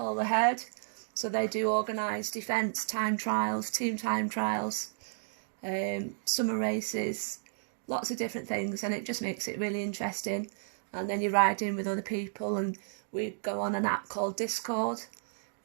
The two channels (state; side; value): silent; left; digital silence